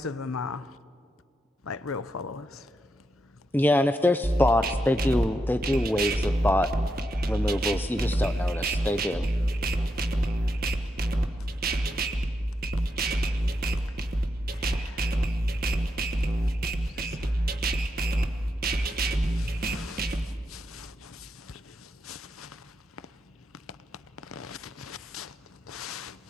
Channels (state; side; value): normal; both; correlation 0.83